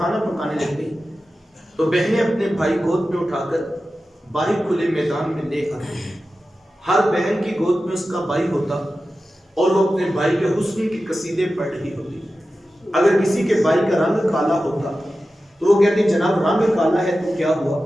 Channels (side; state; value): both; normal; correlation 0.93